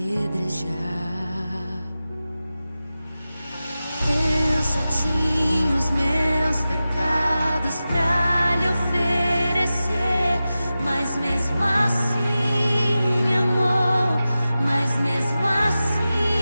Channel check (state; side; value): inverted; both; correlation -0.94